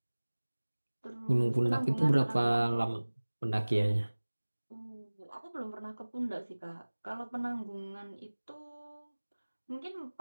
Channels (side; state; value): both; inverted; correlation -1.00